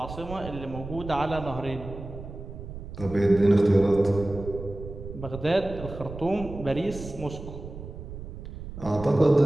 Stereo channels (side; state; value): right; noise; rumble, 11 dB below the sound